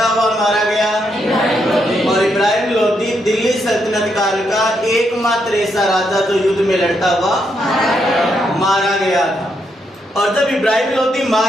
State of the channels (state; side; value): normal; both; correlation 0.79